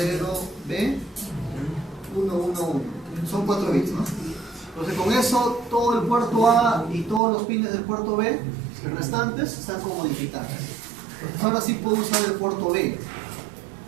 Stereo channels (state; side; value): drops out; left; at 7.2 s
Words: Son 4 bits, ¿no? Entonces con eso todo el puerto A y todos los pines del puerto B restantes están como digitales. Entonces ahora sí puedo usar el puerto B.